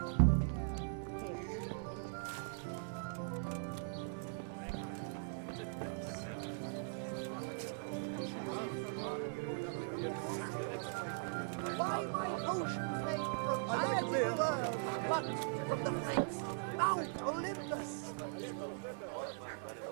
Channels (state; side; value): silent; left; 51 dB below the other